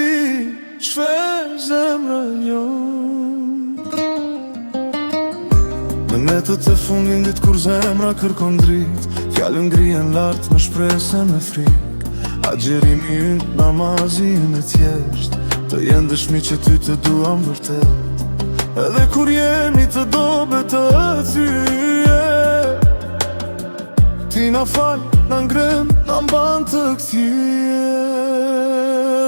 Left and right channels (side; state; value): both; inverted; correlation -1.00